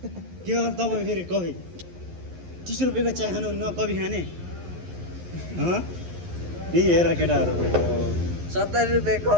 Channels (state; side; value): late; left; 11 ms